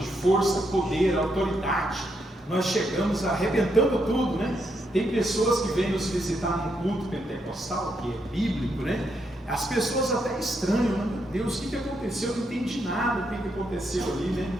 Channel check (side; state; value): both; normal; correlation 0.79